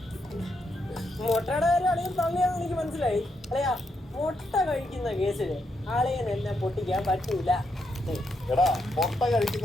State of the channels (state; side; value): normal; both; correlation 0.80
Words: മുട്ടയുടെ കാര്യം അളിയൻ തള്ളിയാന്ന് എനിക്ക് മനസ്സിലായി. അല്ലയാ മുട്ട കഴിക്കുന്ന കേസില് ആളിയൻ എന്നെ പൊട്ടിക്കാൻ പറ്റൂല. എടാ മുട്ട